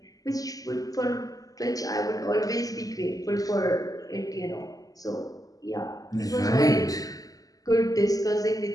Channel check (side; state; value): right; late; 0.17 ms